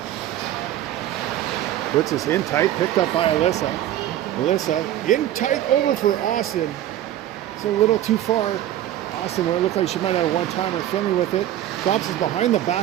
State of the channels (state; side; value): quieter; left; 12.6 dB